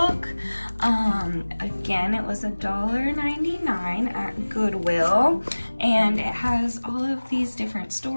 Again, it was $1.99 at Goodwill, and it has all of these different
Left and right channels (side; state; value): both; inverted; correlation -1.00